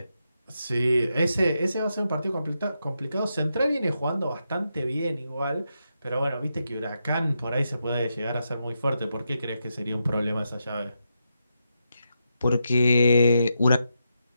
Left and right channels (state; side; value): inverted; both; correlation -0.85